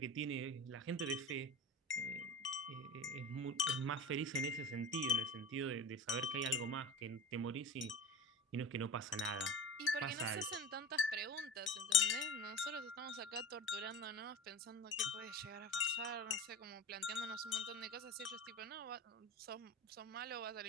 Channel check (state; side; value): normal; both; correlation 0.33